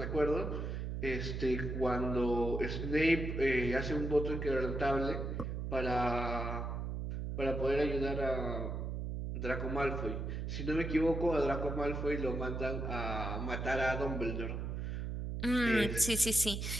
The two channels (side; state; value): right; noise; hum, 3 dB below the sound